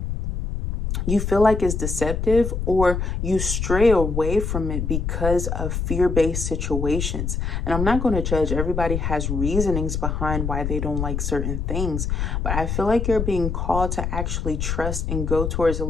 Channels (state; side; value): noise; left; rumble, 2 dB below the sound